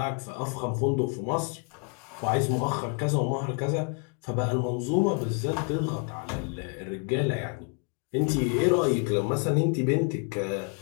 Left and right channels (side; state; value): right; quieter; 37.2 dB